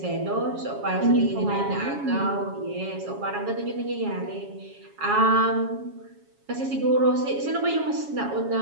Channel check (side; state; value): left; late; 7.2 ms